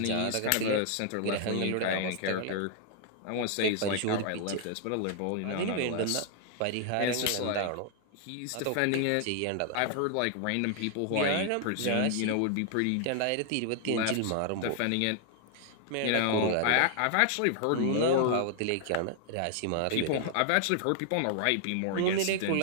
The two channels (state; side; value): different; both; correlation 0.00